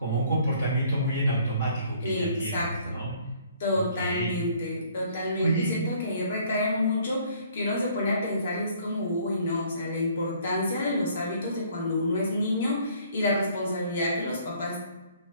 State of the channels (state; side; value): inverted; both; correlation -0.59